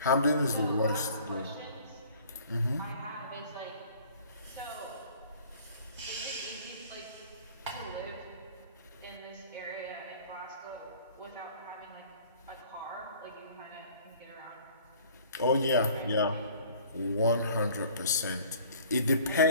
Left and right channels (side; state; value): both; inverted; correlation -0.51